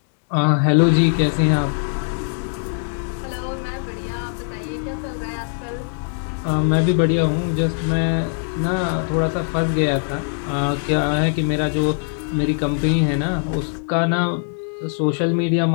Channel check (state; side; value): silent; right; digital silence